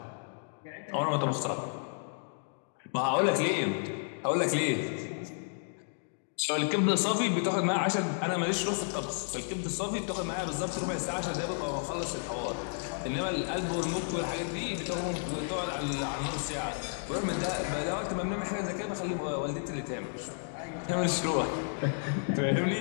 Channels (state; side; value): silent; right; digital silence